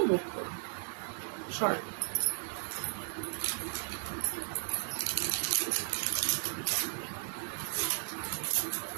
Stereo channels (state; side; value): silent; left; 54 dB below the other